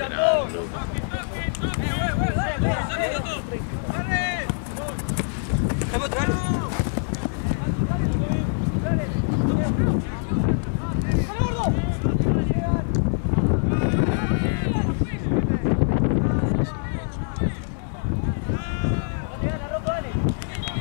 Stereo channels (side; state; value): right; silent; digital silence